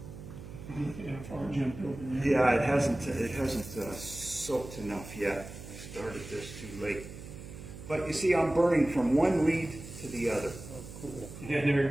Yeah, it hasn't soaked enough yet. I started this too late. But you see, I'm burning from one lead to the other. Oh, cool. Yeah, there you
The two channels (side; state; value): right; noise; hum, 13 dB below the sound